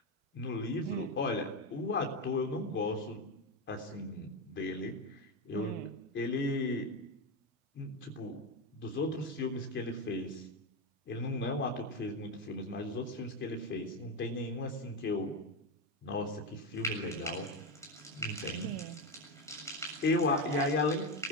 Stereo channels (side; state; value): both; normal; correlation 0.12